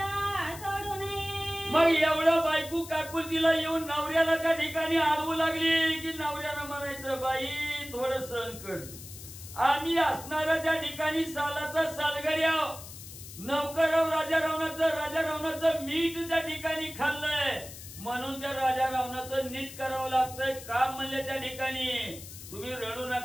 सोडू नये. मग एवढं बायको काकुलतीला येऊन नवऱ्याला त्या ठिकाणी आडवू लागली की नवऱ्यानं म्हणायचं, बाई थोडं सहन कर, आम्ही असणाऱ्या त्या ठिकाणी सालाचा सालगड्या नौकराव राजा रावणाचं मीठ त्या ठिकाणी खाल्लंय, म्हणून त्या राजा रावणाचं नीट करावं लागतंय काम म्हणले त्या ठिकाणी. तुम्ही रडू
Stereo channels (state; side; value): noise; left; hiss, 14 dB below the sound